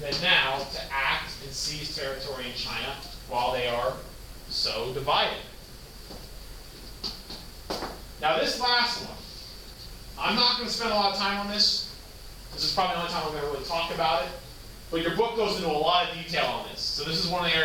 now to act and seize territory in China while they are so divided? Now this last one, I'm not going to spend a lot of time on this. This is probably the only time I'm going to really talk about it. But your book goes into a lot of detail on this. So this is one of the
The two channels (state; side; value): identical; both; correlation 1.00